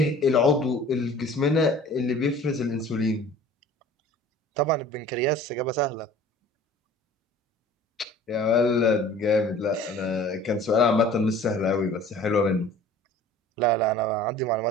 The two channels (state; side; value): normal; both; correlation 0.46